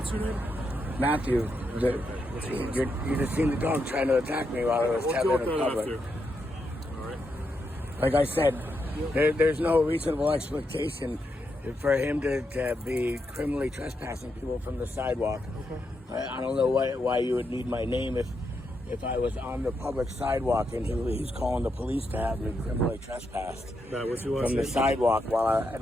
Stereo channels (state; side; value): normal; both; correlation 0.82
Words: your name? Matthew. You just seen the dog trying to attack me while I was tethered in public. All right. Like I said, there's no reasonable expectation for him to be criminally trespassing people from the sidewalk. Okay. I don't know why you would need my name if I was on the public sidewalk and he's calling the police to have me criminally trespassed from the sidewalk while